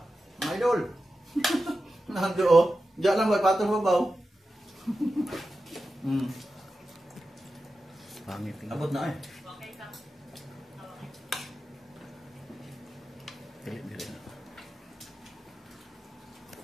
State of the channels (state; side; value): normal; both; correlation 0.92